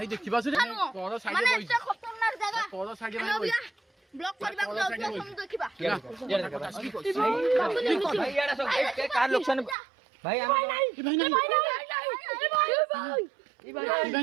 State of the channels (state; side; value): drops out; left; at 9.8 s